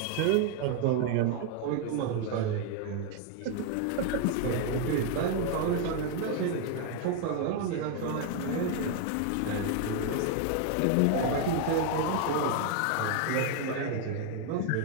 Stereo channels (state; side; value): different; both; correlation 0.00